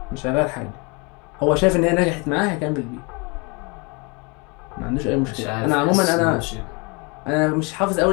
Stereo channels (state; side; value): quieter; right; 30.1 dB